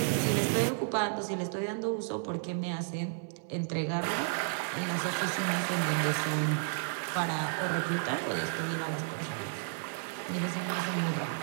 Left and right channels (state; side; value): silent; left; 56 dB below the other